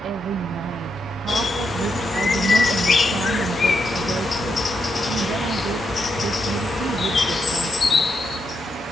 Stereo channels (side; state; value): both; normal; correlation 0.82